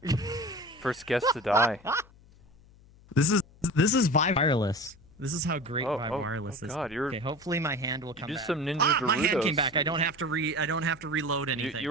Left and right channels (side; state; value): left; noise; hum, 26 dB below the sound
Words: First guest to die. This is Vive Wireless. This is how great Vive Wireless is. God, okay, hopefully my hand will come back. Some Ninja Doritos. My hand came back. I don't have to reload anything. You